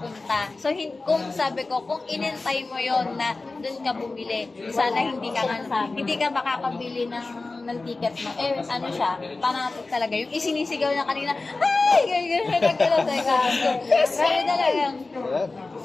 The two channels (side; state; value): right; quieter; 3.5 dB